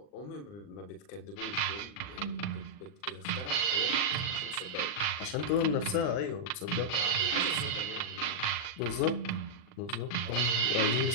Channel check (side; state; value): right; late; 40 ms